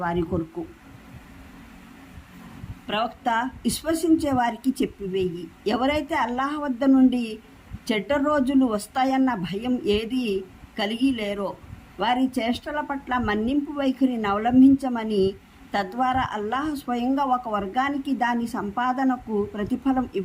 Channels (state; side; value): identical; both; correlation 1.00